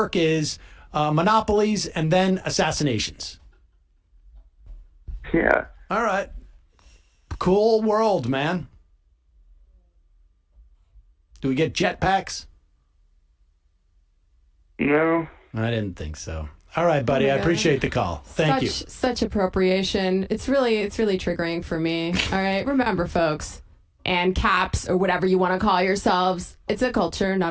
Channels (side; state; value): both; identical; correlation 1.00